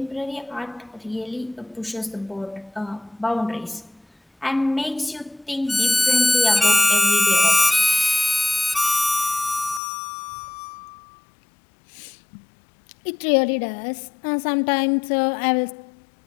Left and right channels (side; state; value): right; drops out; at 9.8 s